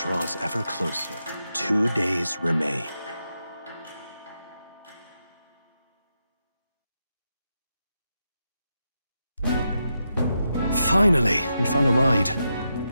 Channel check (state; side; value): inverted; both; correlation -0.86